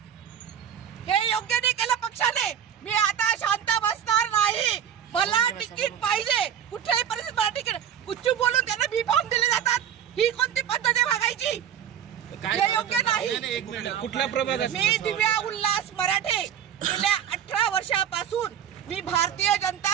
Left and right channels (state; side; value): quieter; left; 9.1 dB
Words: हे योग्य नाही केलं पक्षाने. मी आता शांत बसणार नाही. मला तिकीट पाहिजे. कुठल्याही परिस्थितीत मला तिकीट. कुठची बोलून त्यांना बी फॉर्म दिले जातात. ही कोणती पद्धत आहे वागायची? हे योग्य नाही. कुठल्या प्रभागात? मी दिव्या उल्हास मराठे. गेल्या 18 वर्षापासून मी भारतीय